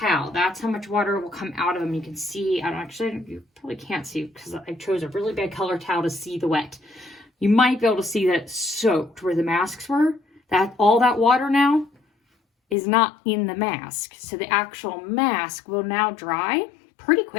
That's how much water will come out of them. You can see, you probably can't see because I chose a really bad color towel to see the wet. You might be able to see that it's soaked where the masks were. All that water now is not in the mask. So the actual mask will now dry pretty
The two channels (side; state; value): right; drops out; at 12.8 s